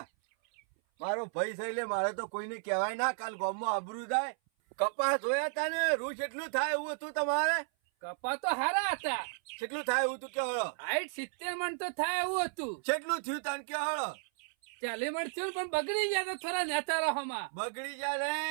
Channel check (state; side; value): silent; left; 55 dB below the other